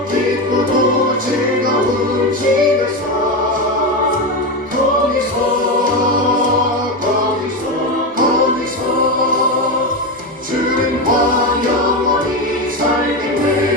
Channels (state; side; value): normal; both; correlation 0.15